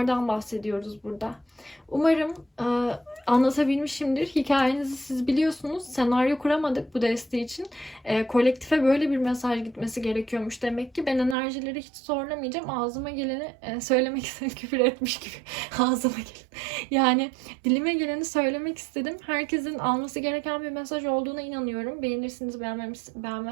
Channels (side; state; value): left; drops out; at 11.4 s